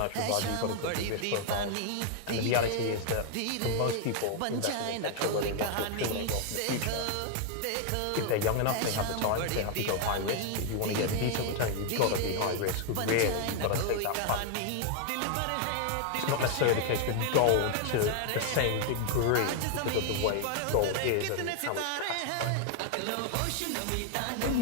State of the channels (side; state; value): both; different; correlation 0.00